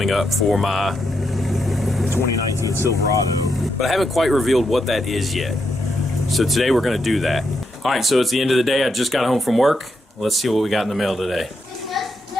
up for my 2019 Silverado. But I haven't quite revealed what that is yet. So today we're going to do that. All right, so it's the end of the day. I just got home from work. Let's see what we got in the mail today.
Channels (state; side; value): normal; both; correlation 0.82